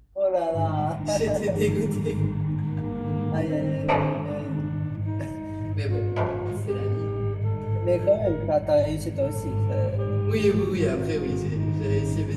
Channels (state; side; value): identical; both; correlation 1.00